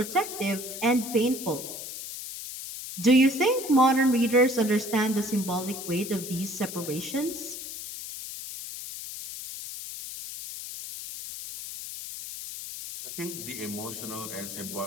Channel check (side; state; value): left; noise; hiss, 9 dB below the sound